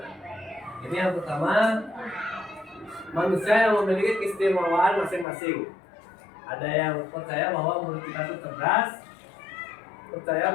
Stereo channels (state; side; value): drops out; right; at 5.2 s